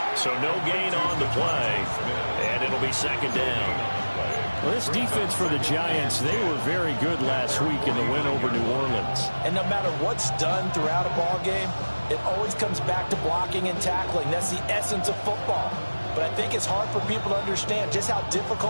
So no gain on the play, and it'll be second down. Well, this defense for the Giants, they were very good last week in the win over New Orleans. And no matter what's done throughout a ball game, it always comes back to blocking and tackling. That's the essence of football. But I think it's hard for people to understand just how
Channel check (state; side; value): inverted; both; correlation -1.00